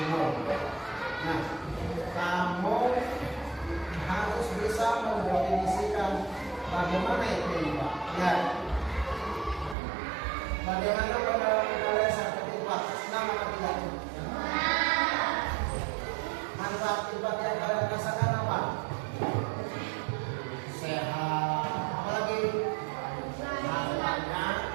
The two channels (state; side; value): drops out; left; at 9.8 s